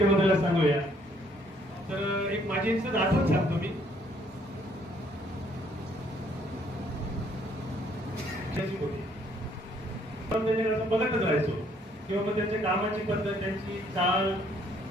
सांगूया. तर एक माझी आठवण सांगतो मी. बघतच राहायचो किंवा मग त्यांच्या कामाची पद्धत, त्यांची चाल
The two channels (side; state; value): both; normal; correlation 0.65